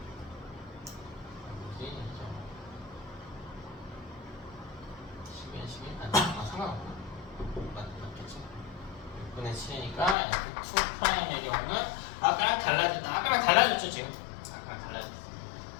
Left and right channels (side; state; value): right; drops out; at 10.2 s